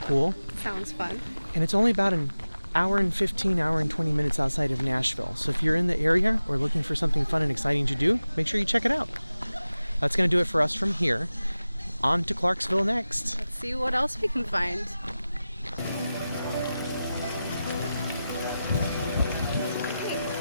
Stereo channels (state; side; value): inverted; both; correlation -0.95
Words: Sounds fun. And it's only about an hour and 15, hour and 20 minutes outside of Nashville. So if you're in the area or looking for something fun and exciting to do, make sure you check it out. That's going to do it for us from here. On to Clarksville next. Let's see what else we can find.